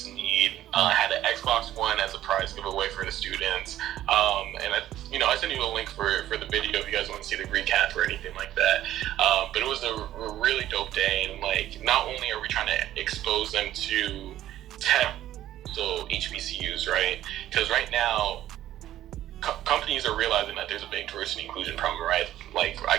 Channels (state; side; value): quieter; left; 13.1 dB